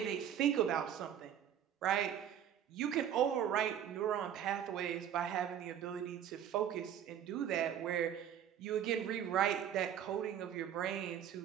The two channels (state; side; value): quieter; left; 9.6 dB